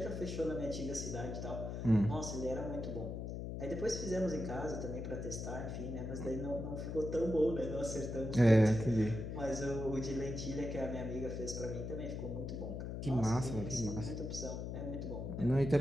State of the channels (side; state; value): left; noise; hum, 5 dB below the sound